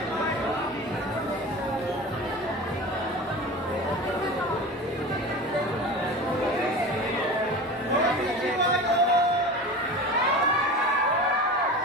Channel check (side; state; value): both; normal; correlation 0.33